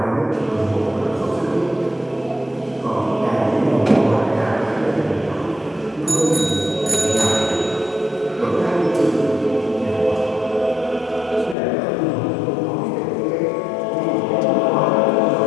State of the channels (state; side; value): drops out; right; at 11.6 s